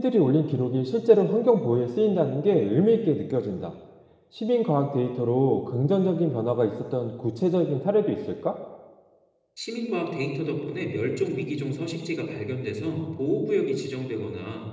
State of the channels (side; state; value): both; identical; correlation 1.00